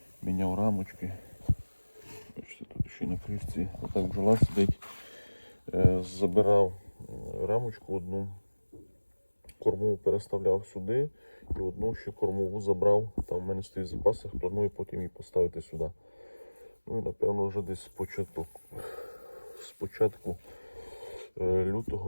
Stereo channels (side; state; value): both; inverted; correlation -1.00